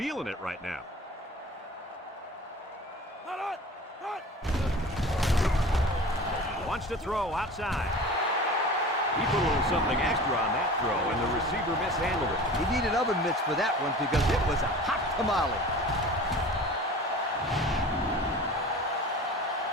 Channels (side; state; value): both; normal; correlation 0.39